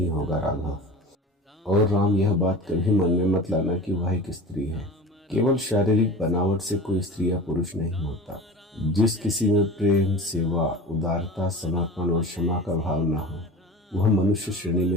होगा राघव। और राम, यह बात कभी मन में मत लाना कि वह एक स्त्री है। केवल शारीरिक बनावट से कोई स्त्री या पुरुष नहीं होता। जिस किसी में प्रेम, सेवा, उदारता, समर्पण और क्षमा का भाव न हो, वह मनुष्य श्रेणी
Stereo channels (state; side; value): normal; both; correlation 0.36